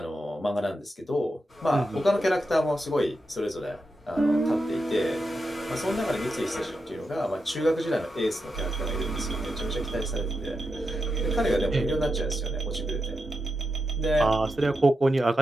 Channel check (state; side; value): normal; both; correlation 0.87